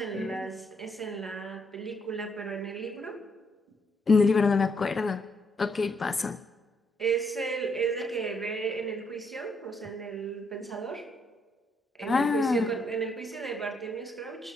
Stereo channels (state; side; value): normal; both; correlation 0.74